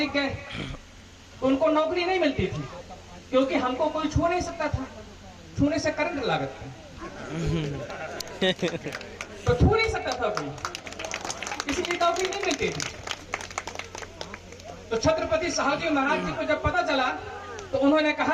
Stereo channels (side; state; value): both; identical; correlation 1.00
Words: गए तो उनको नौकरी नहीं मिलती थी क्योंकि हमको कोई छू नहीं सकता था। छूने से करंट लागत था तो छू नहीं सकता था कोई, इसलिए नौकरी नहीं मिलती थी। तो छत्रपति साहू जी महाराज जी को जब पता चला तो उन्होंने